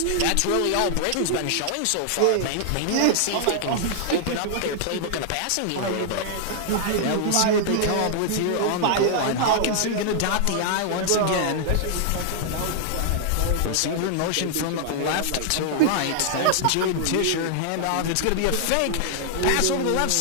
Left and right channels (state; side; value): different; both; correlation -0.01